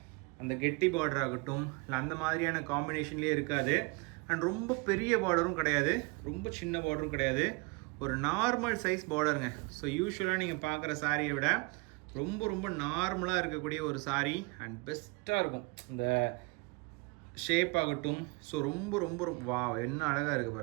அந்த கெட்டி பார்டர் ஆகட்டும், இல்லை அந்த மாதிரியான காம்பினேஷன்லேயே இருக்காது. அண்ட் ரொம்ப பெரிய பார்டரும் கிடையாது, ரொம்ப சின்ன பார்டரும் கிடையாது, ஒரு நார்மல் சைஸ் பார்டருங்க. ஸோ யூஸ்வலாக நீங்கள் பார்க்குற சாரியை விட ரொம்ப ரொம்ப நார்மலாக இருக்கக்கூடிய ஒரு சாரீ அண்ட் பெஸ்ட்டாக இருக்கும் இந்த ஷேப் ஆகட்டும். ஸோ ரொம்ப ரொம்ப வா என்ன அழகாக இருக்குது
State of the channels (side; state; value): left; quieter; 27.9 dB